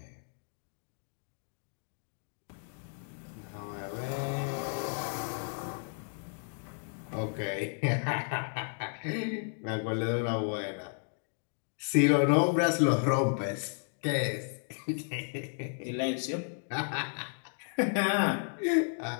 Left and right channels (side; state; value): right; silent; 56 dB below the other